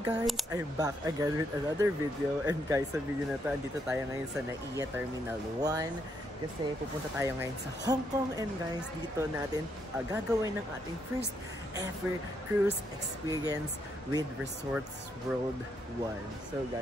I'm back again with another video. And guys, sa video na to, andito tayo ngayon sa NAIA Terminal 1. Kasi pupunta tayo ngayon sa Hong Kong. And guys, dito natin gagawin ng ating first ever cruise experience with Resorts World 1. So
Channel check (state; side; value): normal; both; correlation 0.76